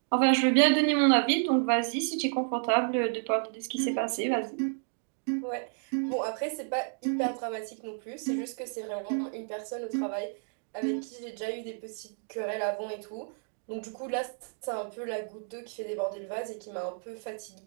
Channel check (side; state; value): left; silent; 57 dB below the other